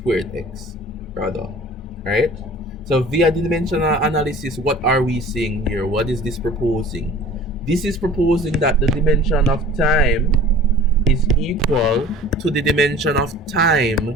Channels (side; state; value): both; normal; correlation 0.44